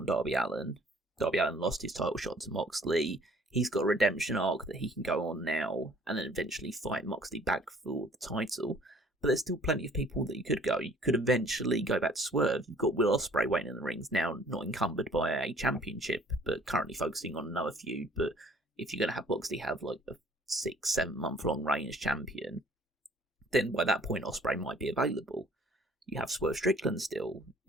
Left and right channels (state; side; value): normal; both; correlation 0.55